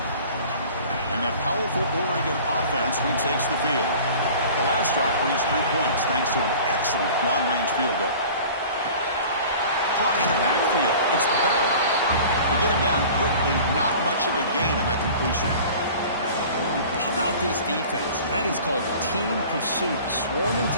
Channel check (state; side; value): inverted; both; correlation -0.43